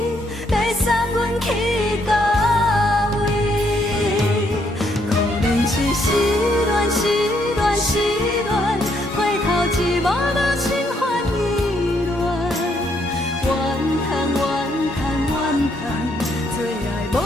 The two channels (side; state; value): both; normal; correlation 0.72